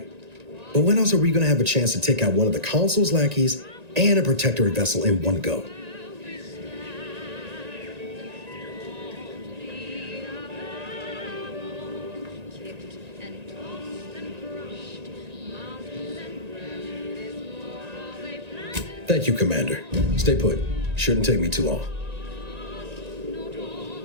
But when else are we going to have a chance to take out one of the consul's lackeys and a Protectorate vessel in one go? Thank you, Commander. Stay put. Shouldn't take me too long.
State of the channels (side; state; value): left; late; 1.9 ms